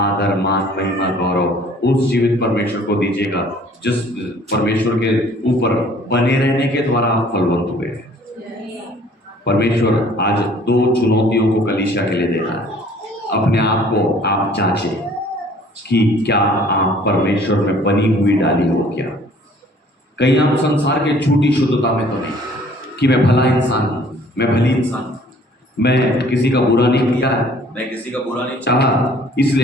मान महिमा गौरव उस जीवित परमेश्वर को दीजिएगा जिस परमेश्वर के ऊपर बने रहने के द्वारा आप फलवंत हुए। परमेश्वर आज दो चुनौतियों को कलीसिया के लिए देता है। अपने आप को आप जांचें कि क्या आप परमेश्वर में बनी हुई डाली हो क्या। कहीं आप संसार के झूठी शुद्धता में तो नहीं कि मैं भला इंसान हूं, मैं भली इंसान हूं, मैं किसी का बुरा नहीं किया है, मैं किसी का बुरा नहीं चाहा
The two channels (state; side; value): normal; both; correlation 0.55